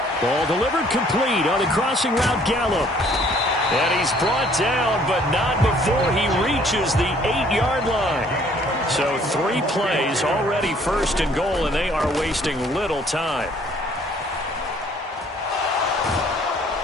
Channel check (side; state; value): both; normal; correlation 0.60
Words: Ball delivered complete on the crossing route, Gallup. And he's brought down, but not before he reaches the 8-yard line. So 3 plays already first and goal, and they are wasting little time.